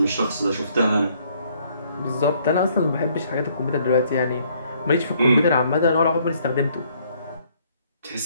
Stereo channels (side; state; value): both; inverted; correlation -0.65